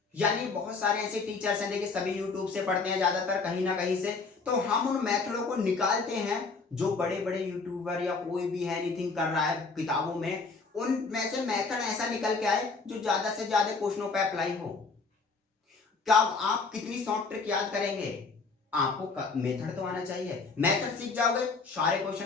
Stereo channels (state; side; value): quieter; right; 4.4 dB